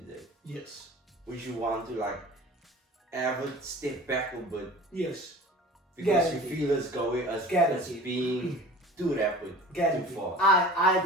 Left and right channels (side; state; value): both; normal; correlation 0.41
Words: Yes. would you want to like have a step back a bit Yes. because Guaranteed. you feel it's going as Guaranteed. being too rapid, Guaranteed. too fast? I